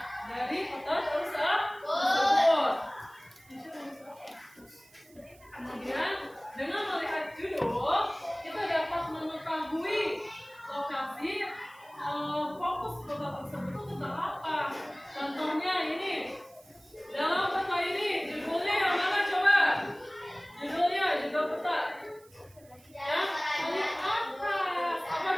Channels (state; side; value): noise; right; hiss, 27 dB below the sound